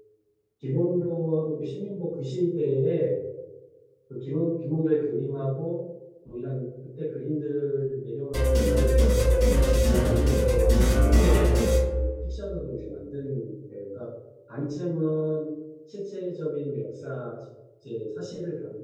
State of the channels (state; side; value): identical; both; correlation 1.00